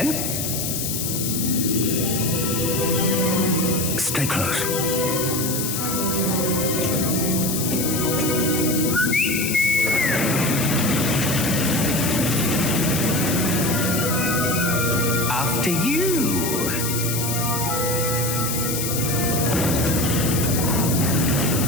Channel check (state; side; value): noise; left; hiss, 2 dB below the sound